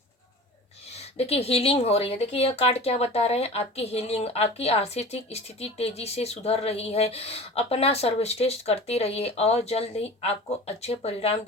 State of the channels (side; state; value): both; normal; correlation 0.37